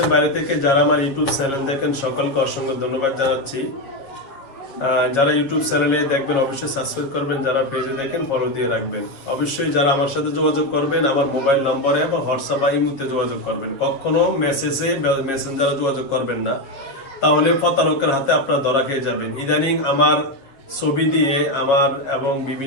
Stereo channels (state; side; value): late; right; 7.3 ms